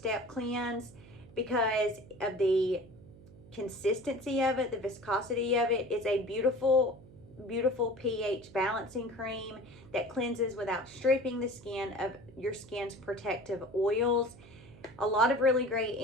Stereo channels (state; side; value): noise; right; hum, 21 dB below the sound